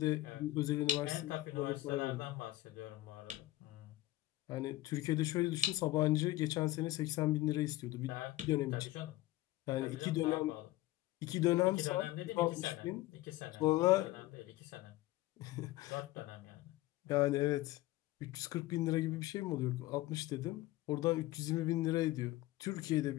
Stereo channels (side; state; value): right; quieter; 16.7 dB